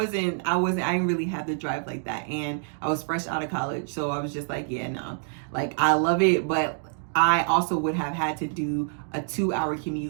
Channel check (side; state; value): left; silent; 60 dB below the other